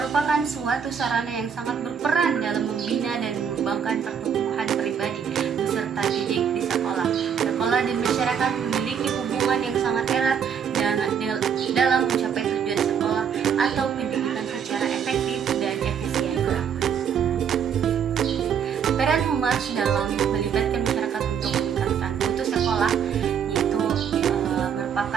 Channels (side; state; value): left; quieter; 7.6 dB